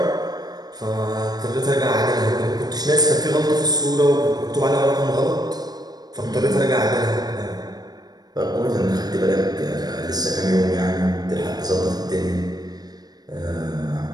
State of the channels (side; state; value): left; late; 0.19 ms